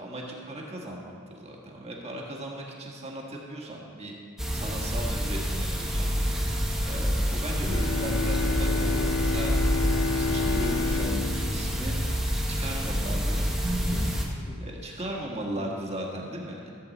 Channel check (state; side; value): normal; both; correlation 0.75